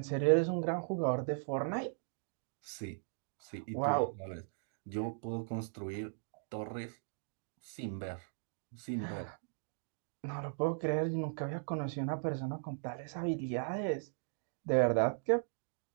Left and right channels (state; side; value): silent; left; digital silence